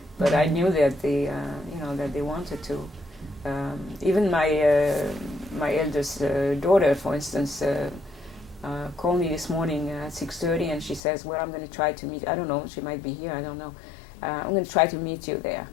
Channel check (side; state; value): right; drops out; at 11.0 s